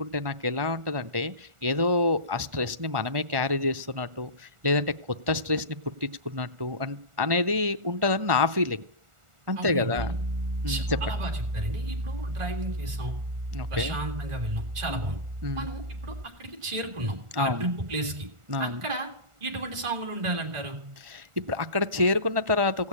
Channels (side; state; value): left; late; 1.4 ms